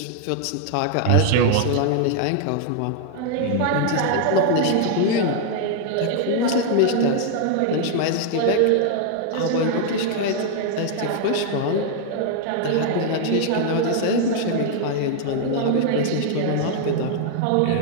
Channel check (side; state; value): both; different; correlation 0.00